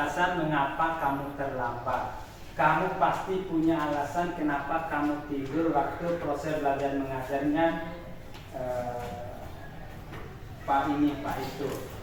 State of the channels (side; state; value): both; identical; correlation 1.00